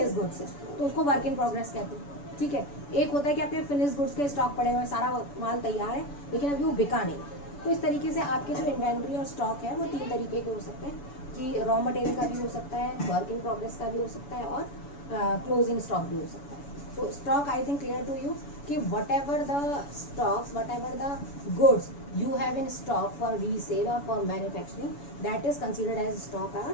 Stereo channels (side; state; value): right; late; 7.0 ms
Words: गुड्स है, तो उसको वर्क इन प्रोग्रेस कहते हैं, ठीक है। एक होता है कि आपके फिनिश गुड्स के स्टॉक पड़े हुए हैं, सारा माल तैयार है लेकिन अभी वो बिका नहीं। तो इस तरीके से आपके जो इन्वेंट्री और स्टॉक है वो 3 तरीके के हो सकते हैं, कि रॉ मटेरियल का भी हो सकता है, वर्क इन प्रोग्रेस का भी हो सकता है, और क्लोजिंग स्टॉक भी हो सकता है। तो stock I think clear to you कि whatever the stocks, whatever the goods you have in stock for resale or for manufacturing, that is considered as stock or